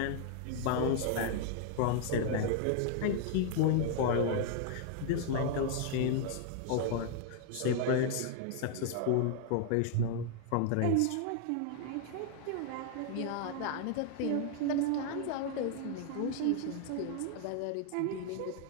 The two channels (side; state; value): both; different; correlation 0.00